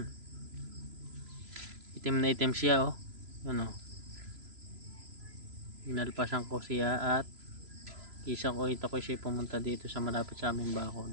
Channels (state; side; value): late; left; 3.0 ms